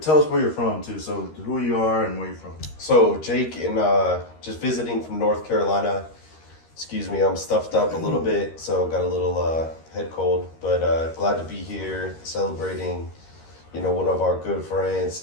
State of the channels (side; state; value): right; late; 13 ms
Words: where you're from too. So who you are and where you're from. So Jake, and just visiting from North Carolina. Excuse me, I'm stuffed up a little bit, so got a little head cold. But glad to be here, celebrating, one of our good friends,